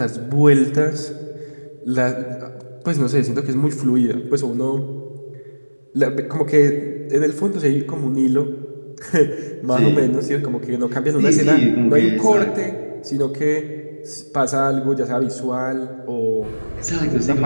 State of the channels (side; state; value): both; inverted; correlation -1.00